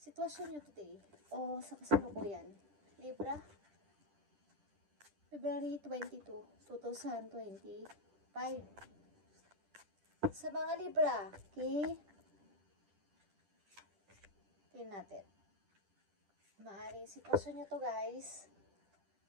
sitwasyon nyo today o sa kasalukuyan. Libra, February 22, 2025. Sa mga Libra, okay? Tingnan natin. Maaaring sitwasyon nyo to, guys.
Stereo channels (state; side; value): late; left; 10 ms